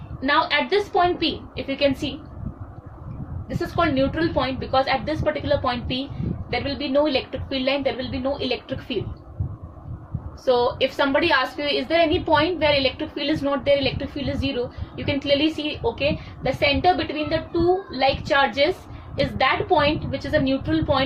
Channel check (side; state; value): both; identical; correlation 1.00